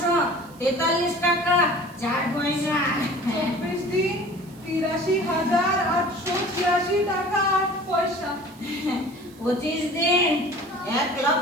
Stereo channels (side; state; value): right; noise; hiss, 26 dB below the sound